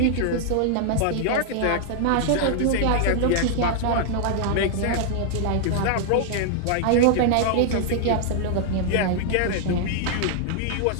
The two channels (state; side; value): different; both; correlation 0.00